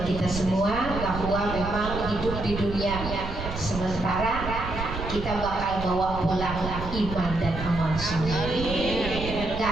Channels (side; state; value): right; noise; rumble, 7 dB below the sound